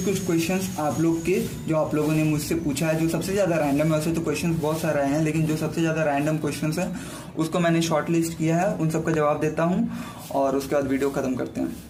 क्वेश्चंस आप लोग के जो आप लोगों ने मुझसे पूछा है, जो सबसे ज़्यादा रैंडम है, वैसे तो क्वेश्चंस बहुत सारे हैं, लेकिन जो सबसे ज़्यादा रैंडम क्वेश्चंस हैं उसको मैंने शॉर्ट लिस्ट किया है, उन सबका जवाब देता हूँ और उसके बाद वीडियो ख़त्म करते हैं।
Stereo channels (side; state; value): both; identical; correlation 1.00